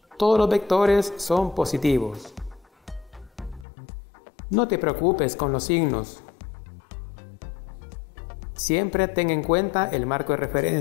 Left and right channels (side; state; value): right; drops out; at 3.7 s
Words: Todos los vectores son positivos. No te preocupes con los signos. Siempre ten en cuenta el marco de